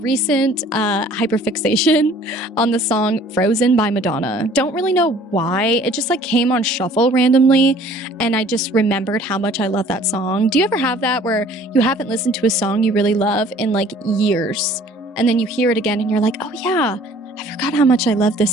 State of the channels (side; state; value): both; normal; correlation 0.53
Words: hyperfixation on the song Frozen by Madonna. Don't really know why. It just like came on shuffle randomly, and I just remembered how much I love that song. Do you ever have that where you haven't listened to a song you really love in like years, and then you hear it again and you're like, oh yeah, I forgot how much I love